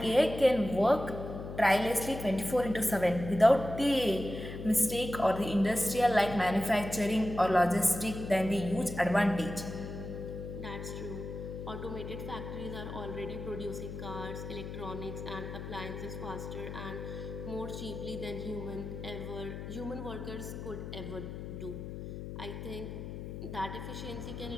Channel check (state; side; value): noise; left; hum, 8 dB below the sound